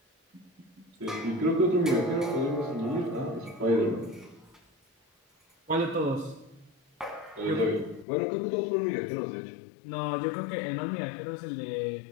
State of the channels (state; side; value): drops out; right; at 8.1 s